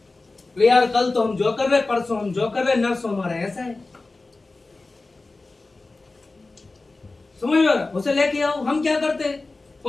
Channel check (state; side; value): quieter; right; 3.4 dB